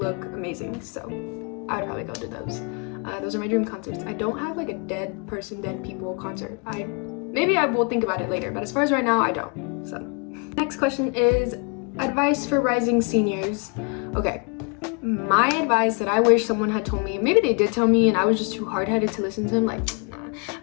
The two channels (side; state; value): right; quieter; 34.4 dB